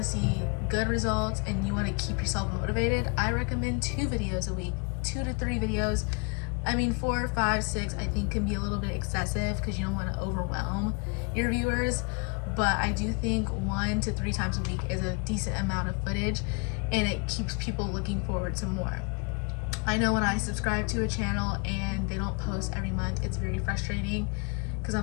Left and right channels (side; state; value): right; quieter; 33.2 dB